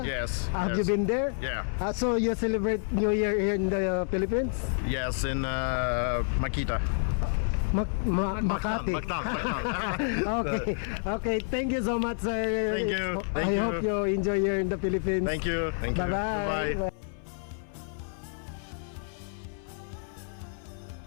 Yes. Have yes. you been there? Yeah. So you celebrate New Year here in the Philippines? Yes, in Makita. Makati. Mactan. Okay. Okay. Thank you so much, sir. Thank you. I hope you enjoy here in the Philippines. Thank you. Thank you. Bye-bye. Bye.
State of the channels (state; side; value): silent; right; 56 dB below the other